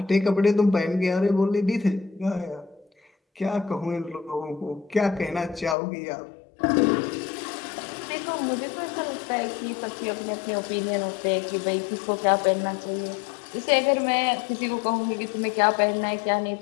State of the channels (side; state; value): right; drops out; at 5.8 s